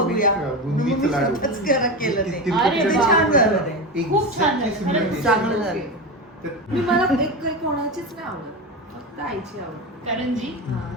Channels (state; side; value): normal; both; correlation 0.20